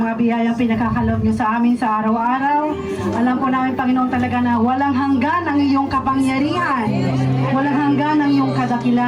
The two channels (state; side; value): identical; both; correlation 1.00